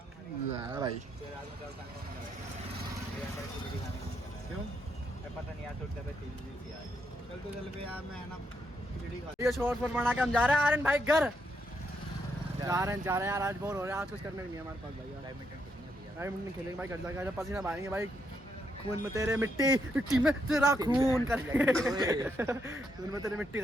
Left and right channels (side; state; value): both; normal; correlation 0.78